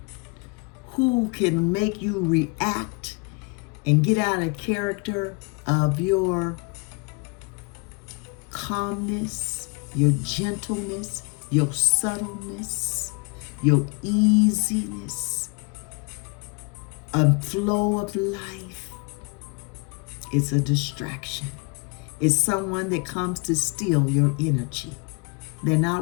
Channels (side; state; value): right; quieter; 32.5 dB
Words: Who can make you react and get out of character of your calmness, your gentleness, your subtleness, your easiness, a flow of life? It's a distraction. It's someone that comes to steal your energy. They're